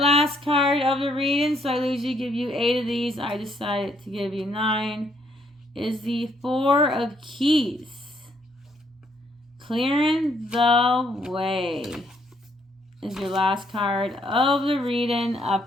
card of the reading, so I usually give you 8 of these. I decided to give you 9, is the 4 of Keys. Clearing the way is your last card of the reading,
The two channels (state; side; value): normal; both; correlation 0.70